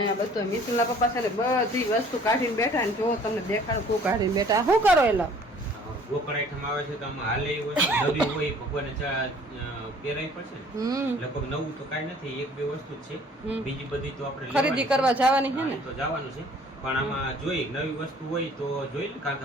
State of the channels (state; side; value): normal; both; correlation 0.54